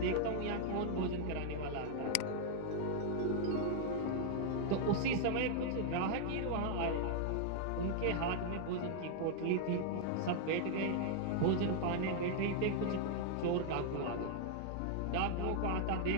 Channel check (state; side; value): different; both; correlation -0.01